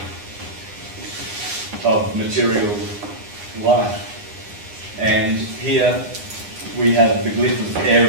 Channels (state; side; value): late; left; 9.8 ms